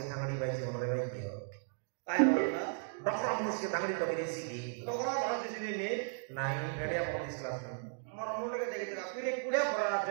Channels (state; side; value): silent; left; digital silence